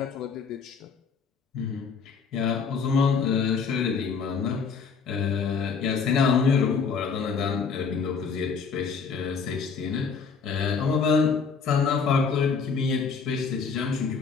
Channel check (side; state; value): right; quieter; 5.5 dB